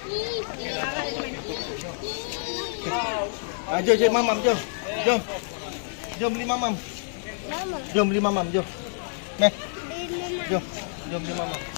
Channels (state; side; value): silent; right; 60 dB below the other